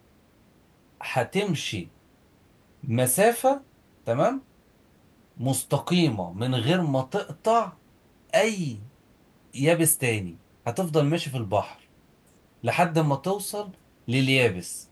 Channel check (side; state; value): both; identical; correlation 1.00